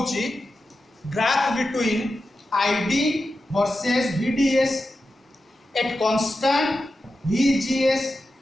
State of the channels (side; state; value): both; normal; correlation 0.91